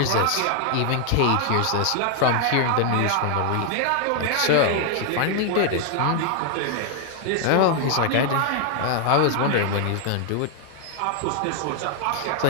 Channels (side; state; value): both; different; correlation 0.00